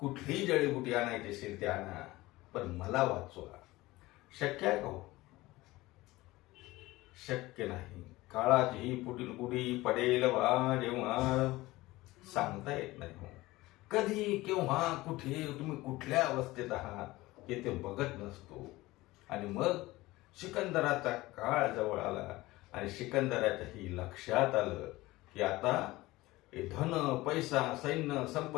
जडीबुटी आणायची असेल ते आणा, पण मला वाचवा. शक्य आहे का हो? शक्य नाही. काळाची ही पुढील पुढी पडेल बा जेव्हा सांगता येत नाही हो. कधी, केव्हा, कुठे, तुम्ही कुठल्या अवस्थेत आहात हे ते बघत नसतो. आणि मग सिकंदराचा काळ जवळ आला, आणि सिकंदराच्याही लक्षात आलं की आता हे धन, पैसा, सैन्य,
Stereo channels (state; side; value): quieter; right; 19.2 dB